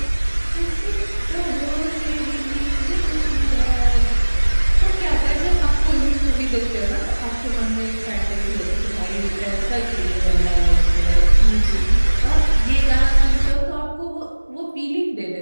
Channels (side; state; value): both; inverted; correlation -1.00